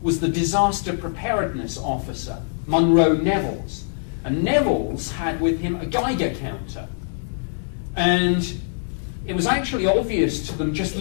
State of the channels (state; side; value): silent; right; digital silence